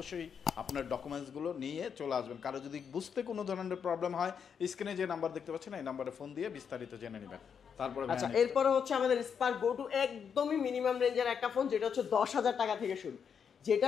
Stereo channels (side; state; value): right; quieter; 7.1 dB